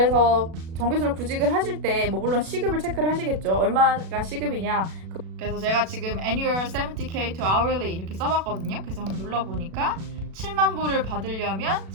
정규수로 구직을 하실 때 뭐 물론 시급을 체크를 하시겠죠. 얼마가 시급이냐. 그래서 제가 지금 annual 70k to hourly 이렇게 써봤거든요. 그래서 한번 눌러보니까 7만 불을 받으려면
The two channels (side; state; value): left; late; 36 ms